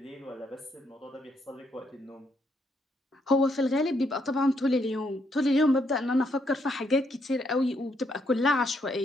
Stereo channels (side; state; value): both; normal; correlation 0.75